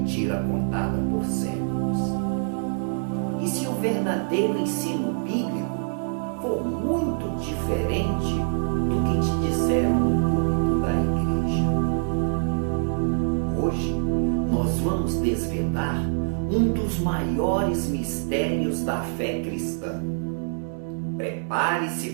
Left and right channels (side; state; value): left; silent; digital silence